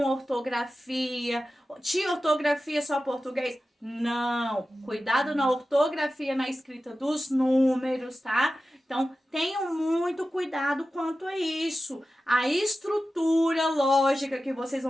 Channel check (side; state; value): both; normal; correlation 0.94